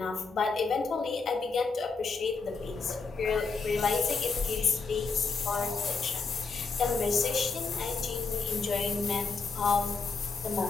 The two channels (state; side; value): quieter; right; 4.5 dB